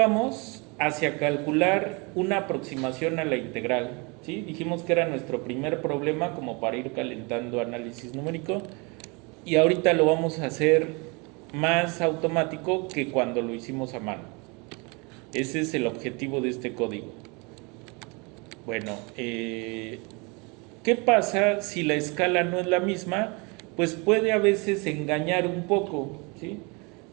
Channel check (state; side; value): quieter; left; 29.8 dB